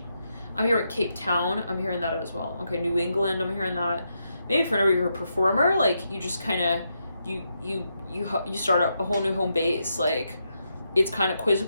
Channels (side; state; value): both; inverted; correlation -0.83